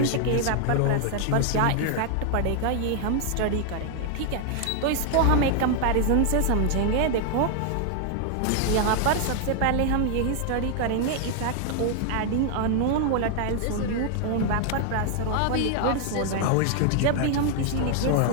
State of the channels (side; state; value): both; different; correlation 0.00